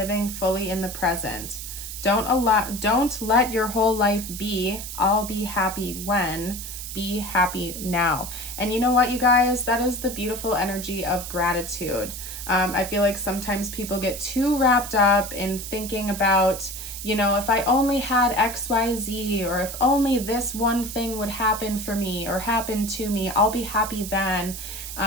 fully in the present. Don't let your whole life be, I'll be happy when. Be happy now. And you know what, you guys? That is the beautiful energy of gratitude. I feel like sometimes people get too wrapped up in thinking about, you know, if I only had XYZ, or if only this one thing would happen for me or happen to me, I'll be happy then.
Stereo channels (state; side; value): noise; right; hiss, 9 dB below the sound